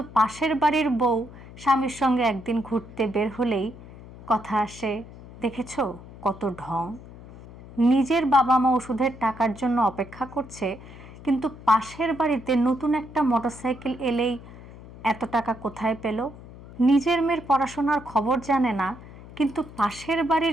পাশের বাড়ির বউ স্বামীর সঙ্গে একদিন ঘুরতে বের হলেই কথা আসে দেখেছো কত ঢং। নিজের বাবা মা ওষুধের টাকার জন্য অপেক্ষা করছে, কিন্তু পাশের বাড়িতে নতুন একটা মোটরসাইকেল এলেই এত টাকা কোথায় পেল। নিজের মেয়ের পড়াশোনার খবর জানে না, কিন্তু পাশের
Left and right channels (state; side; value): noise; left; hum, 17 dB below the sound